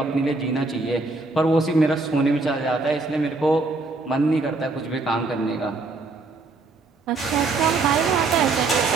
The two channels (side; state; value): left; quieter; 3.5 dB